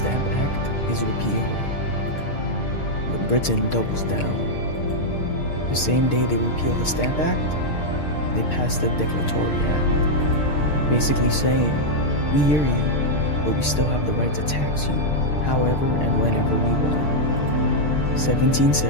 Act is repealed. But Britain doubles down. The same day they repealed the Stamp Act, they passed the Declaratory Act, basically saying, we hear you, but we still have the right to tax you, however and whenever we want.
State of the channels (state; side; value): late; right; 6.6 ms